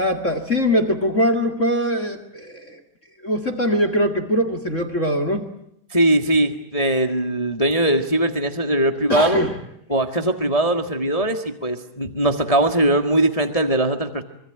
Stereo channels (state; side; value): late; right; 1.7 ms